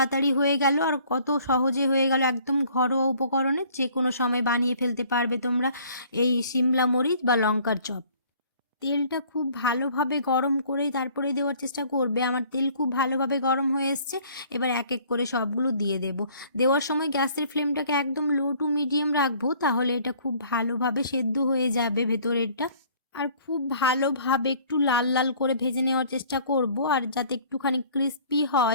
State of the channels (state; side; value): inverted; both; correlation -0.55